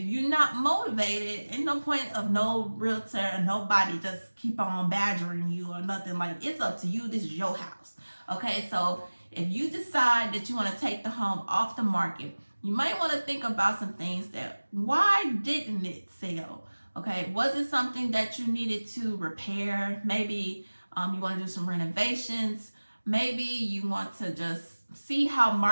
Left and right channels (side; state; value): both; inverted; correlation -1.00